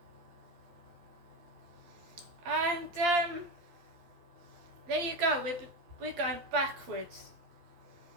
And there you go, we're going backwards,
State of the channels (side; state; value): left; late; 12 ms